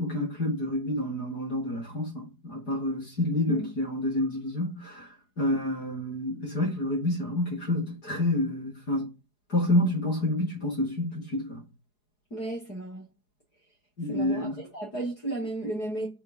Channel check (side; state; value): right; late; 4.8 ms